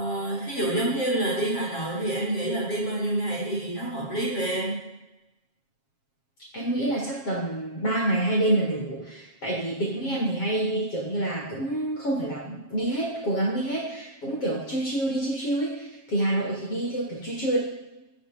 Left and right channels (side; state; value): right; late; 7.4 ms